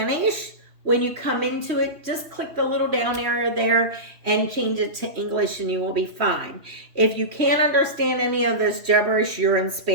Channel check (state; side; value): late; left; 2.9 ms